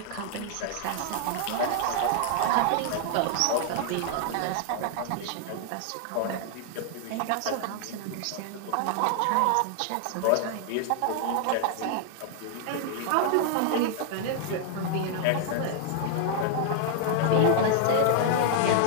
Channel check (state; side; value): different; both; correlation 0.00